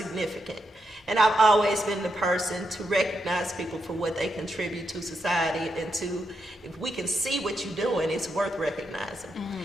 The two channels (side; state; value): both; normal; correlation 0.82